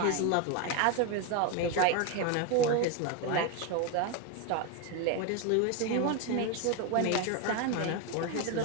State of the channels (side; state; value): both; different; correlation 0.02